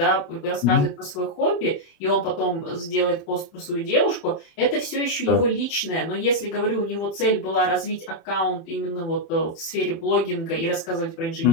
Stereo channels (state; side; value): late; right; 30 ms